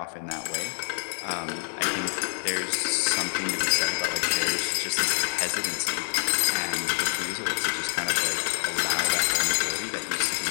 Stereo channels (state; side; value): silent; right; 60 dB below the other